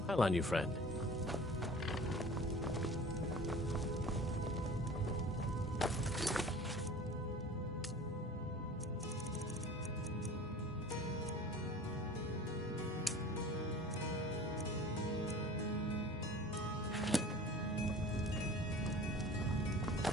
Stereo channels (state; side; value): normal; both; correlation 0.42